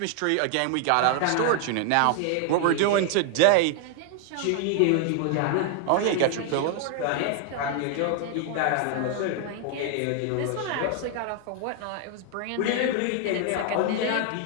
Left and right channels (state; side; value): different; both; correlation 0.00